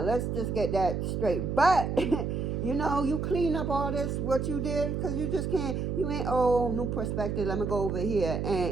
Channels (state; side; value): noise; right; hum, 1 dB below the sound